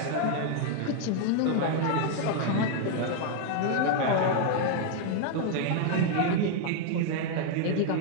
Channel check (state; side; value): different; both; correlation 0.00